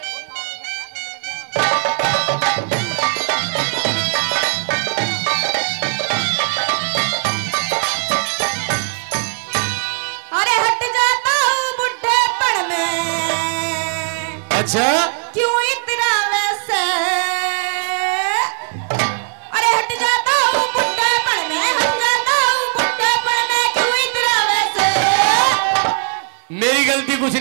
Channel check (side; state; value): left; silent; 57 dB below the other